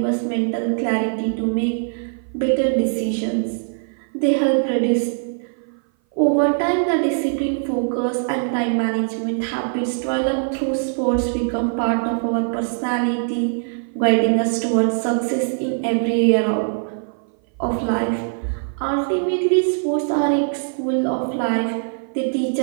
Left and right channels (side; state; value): left; silent; 58 dB below the other